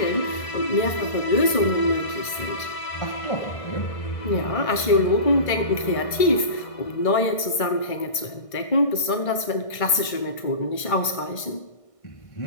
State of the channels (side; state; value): right; late; 1.6 ms